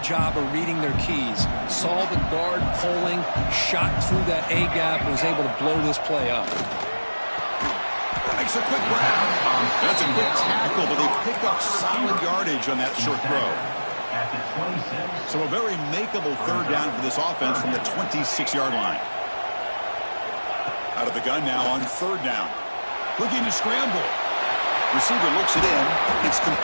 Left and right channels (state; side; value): inverted; both; correlation -1.00